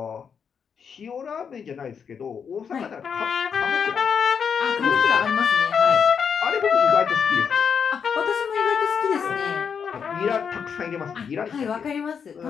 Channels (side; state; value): right; quieter; 6.8 dB